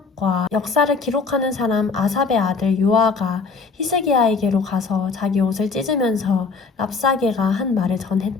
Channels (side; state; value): right; quieter; 4.7 dB